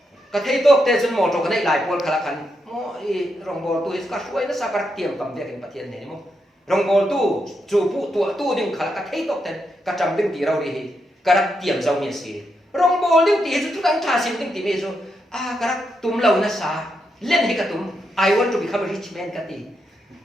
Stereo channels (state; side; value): normal; both; correlation 0.82